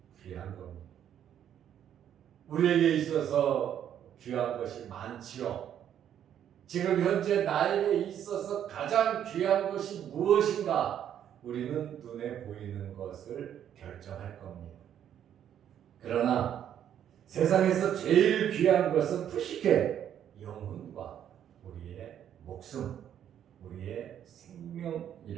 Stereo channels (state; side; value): quieter; left; 9.9 dB